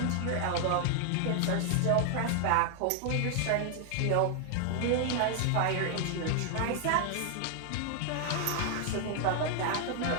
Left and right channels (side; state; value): both; different; correlation 0.00